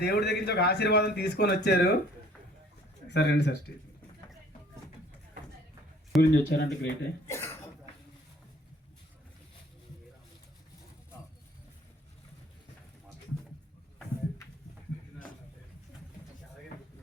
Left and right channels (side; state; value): both; normal; correlation 0.56